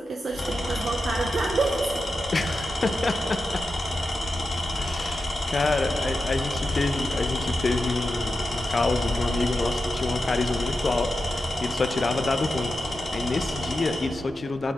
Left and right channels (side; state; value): both; normal; correlation 0.90